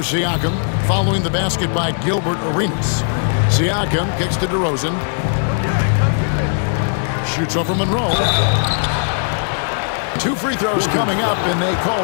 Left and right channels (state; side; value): silent; right; digital silence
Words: Siakam following the basket by Gilbert Arenas. Siakam kicks to DeRozan. Shoots over Monroe. 2 free throws coming up, and they call